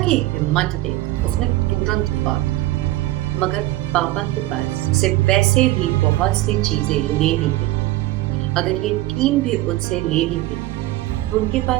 हिम्मत देख, उसने तुरंत बात, मगर पापा के पास से वैसे भी बहुत सी चीजें लेनी थी। अगर ये टीम भी उनसे ले ली गई तो उनके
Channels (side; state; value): left; quieter; 16.9 dB